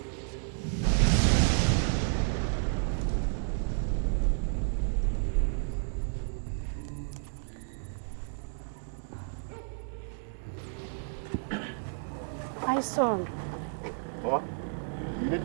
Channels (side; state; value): left; silent; digital silence